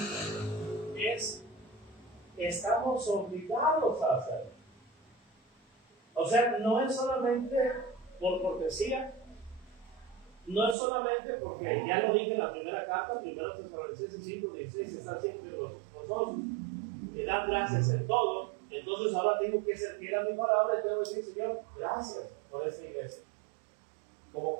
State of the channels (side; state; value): left; drops out; at 10.8 s